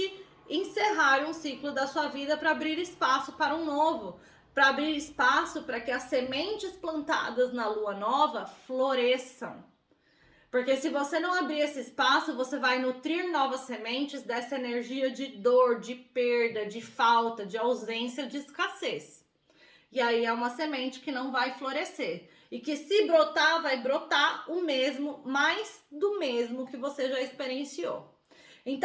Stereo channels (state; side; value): identical; both; correlation 1.00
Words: encerrar um ciclo da sua vida para abrir espaço para um novo. Para abrir espaço para que as sementes plantadas na lua nova floresçam. Porque se você não abrir esse espaço, você vai nutrir novas sementes dessa energia de dor, de perda, de falta, de ausência, de escassez. E aí é uma semente que não vai florescer. E que se brotar, vai brotar o mesmo, mais do mesmo que você já experienciou.